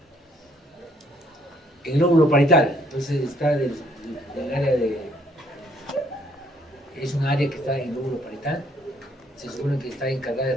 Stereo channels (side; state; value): both; normal; correlation 0.65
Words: El lóbulo parietal, entonces está del área de... Es un área que está en el lóbulo parietal. Se supone que está encargada de